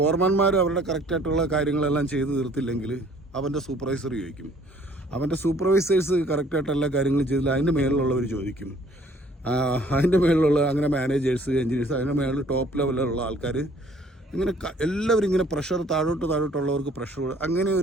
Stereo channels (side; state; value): both; normal; correlation 0.58